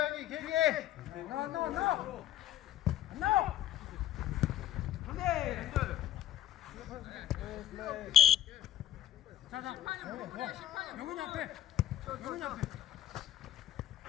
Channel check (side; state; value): right; quieter; 11.6 dB